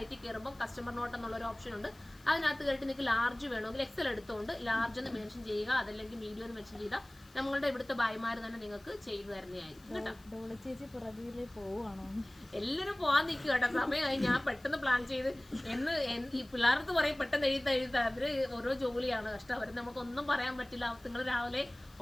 കയറുമ്പോൾ കസ്റ്റമർ നോട്ട് എന്നുള്ളൊരു ഓപ്ഷൻ ഉണ്ട്. അതിനകത്ത് കയറിയിട്ട് നിങ്ങൾക്ക് ലാർജ് വേണമെങ്കിൽ എക്സൽ എടുത്തുകൊണ്ട് ലാർജ് എന്ന് മെൻഷൻ ചെയ്യുക, അതല്ലെങ്കിൽ മീഡിയം എന്ന് മെൻഷൻ ചെയ്താൽ നമ്മളുടെ ഇവിടുത്തെ ഭായിമാർ തന്നെ നിങ്ങൾക്ക് ചെയ്തു തരുന്നതായിരിക്കും കേട്ടോ. എല്ലാവരും പോകാൻ നിൽക്കും കേട്ടോ. സമയമായി. ഞാൻ പെട്ടെന്ന് പ്ലാൻ ചെയ്ത് ഈ പിള്ളേർക്ക് പറയും പെട്ടെന്ന് എഴുതാ അവര് ഓരോ ജോലിയാണ് കഷ്ടം. അവർ നമുക്കൊന്നും പറയാൻ പറ്റില്ല. നിങ്ങൾ രാവിലെ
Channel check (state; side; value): noise; left; hiss, 27 dB below the sound